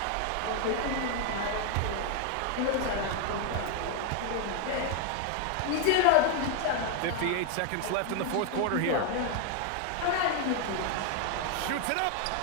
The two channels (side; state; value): both; different; correlation 0.01